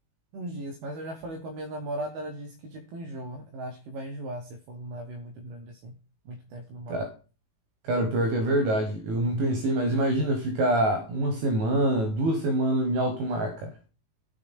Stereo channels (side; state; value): left; late; 18 ms